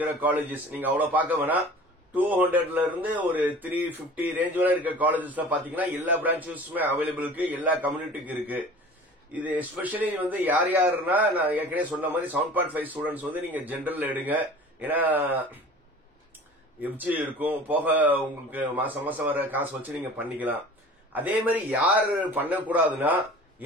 காலேஜஸ் நீங்க அவ்வளவு பார்க்க வேணாம். 200ல இருந்து ஒரு 350 ரேஞ்ச் வரை இருக்கிற காலேஜஸ்ல பாத்தீங்கன்னா எல்லா பிரான்ச்சஸுமே அவைலபிள் இருக்கு, எல்லா கம்யூனிட்டிக்கு இருக்கு. இது எஸ்பெஷலி யார் யாருன்னா, நான் ஏற்கனவே சொன்ன மாதிரி 7.5 ஸ்டூடெண்ட்ஸ் நீங்க ஜெனரல் எடுங்க. ஏன்னா எஃப்ஜி இருக்கும், போக உங்களுக்கு மாசம் மாசம் வர காசு வச்சு நீங்க பண்ணிக்கலாம். அதே மாதிரி யார் பண்ணக்கூடாதுன்னா,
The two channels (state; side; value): normal; both; correlation 0.43